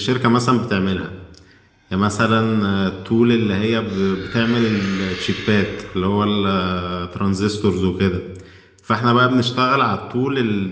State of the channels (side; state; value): both; identical; correlation 1.00